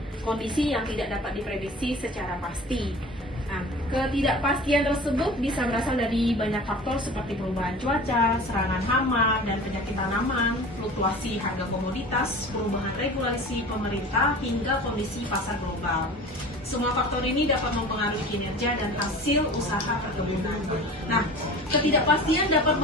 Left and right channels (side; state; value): both; normal; correlation 0.39